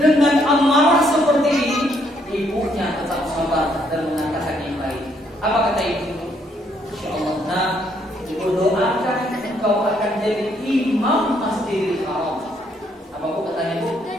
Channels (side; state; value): both; normal; correlation 0.70